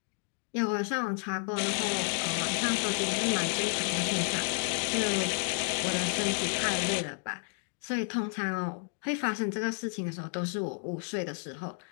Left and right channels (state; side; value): silent; right; 57 dB below the other